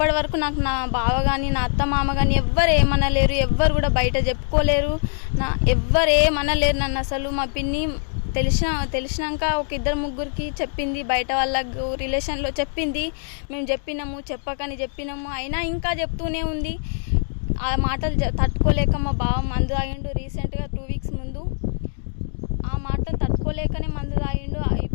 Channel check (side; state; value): right; silent; 59 dB below the other